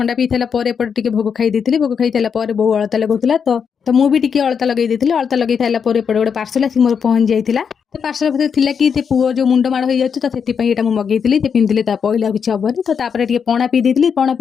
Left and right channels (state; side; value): quieter; right; 6.7 dB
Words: पी सारापर एपटे भोग खाई देती भोग खाई सारापर बो अलता लगुला तो मुझे भी अलता लगे अलता लगे सारापर एपटे गोटे पार्सल आसिक मोर पहुँच जाइए तो पार्सल भर थी कि पुओ जो मुंड माड़ हो जाए तो से मगेली पिंधिले पहले किसी हेनी तो तापर पणा पी देती पणा